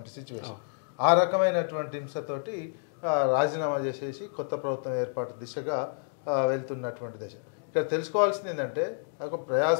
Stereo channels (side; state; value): right; silent; digital silence